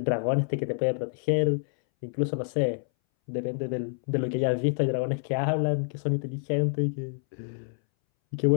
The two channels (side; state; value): right; silent; 60 dB below the other